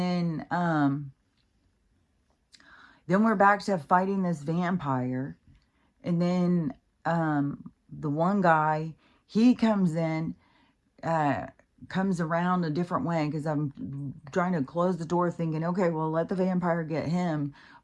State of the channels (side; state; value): both; identical; correlation 1.00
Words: we're back to fighting this vampire. And then the one guy, he comes in, comes around a different way because I'm trying to close the door thinking, okay, well, let the vampire get him